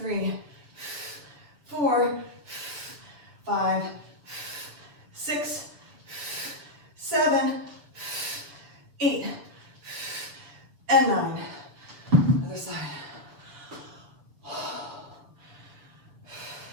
4, 5, 6, 7, 8, and 9. Other side.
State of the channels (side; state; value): left; late; 7.0 ms